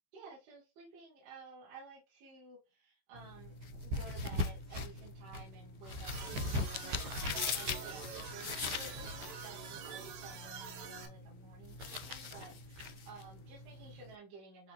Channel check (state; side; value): late; left; 15 ms